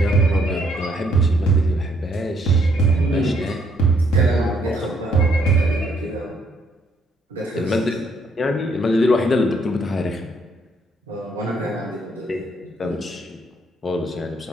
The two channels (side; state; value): both; normal; correlation 0.69